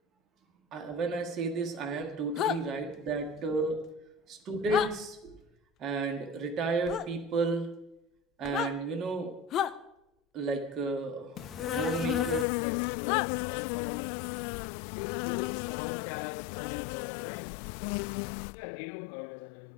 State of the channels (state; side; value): drops out; right; at 12.5 s